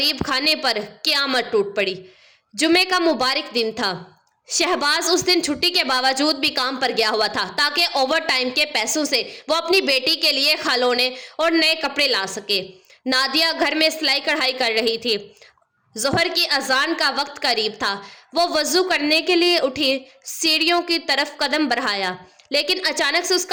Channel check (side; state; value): both; identical; correlation 1.00